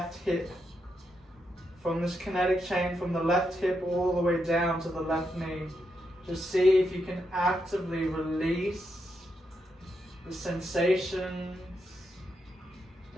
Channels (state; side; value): normal; both; correlation 0.82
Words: hip. From this kinetic chain from the left hip all the way down to the left knee. Just see if you can actively release the sensations